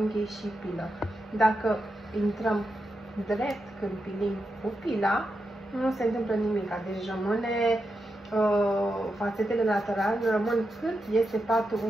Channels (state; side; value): normal; both; correlation 0.87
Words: și pilă. Dacă intrăm drept când pilim cu pila, nu se întâmplă nimic, deci rămâne fațetele laterale rămân cât este patul